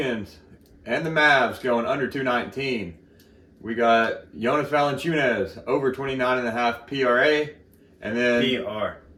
and the Mavs going under 219. We got Jonas Valanciunas over 29.5 PRA. And then PR,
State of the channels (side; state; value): both; identical; correlation 1.00